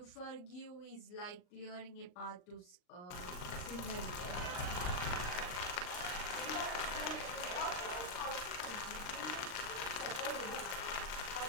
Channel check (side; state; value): right; late; 39 ms